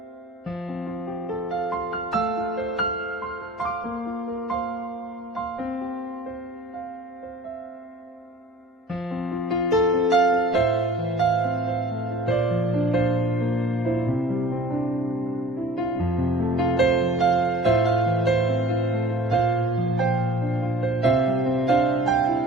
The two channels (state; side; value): normal; both; correlation 0.47